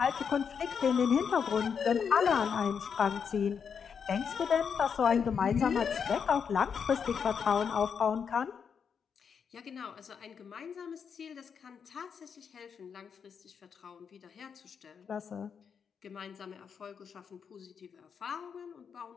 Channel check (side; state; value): right; quieter; 6.8 dB